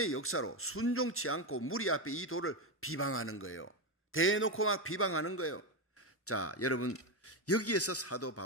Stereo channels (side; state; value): both; normal; correlation 0.11